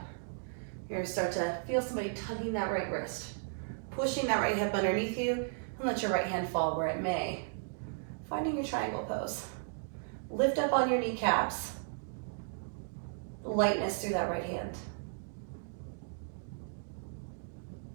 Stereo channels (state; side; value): silent; left; digital silence